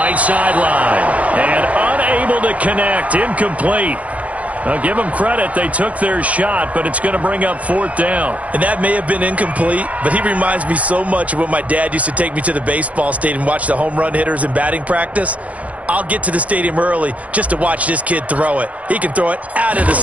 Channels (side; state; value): left; late; 0.067 ms